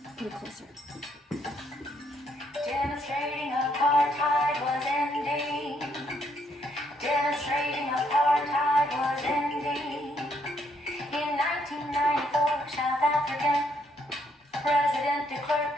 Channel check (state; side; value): normal; both; correlation 0.72